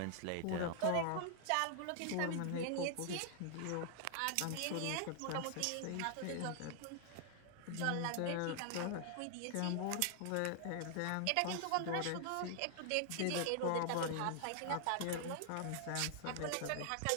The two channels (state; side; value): different; both; correlation 0.00